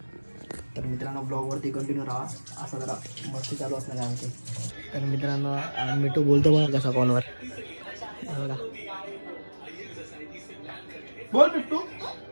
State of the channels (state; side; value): inverted; both; correlation -1.00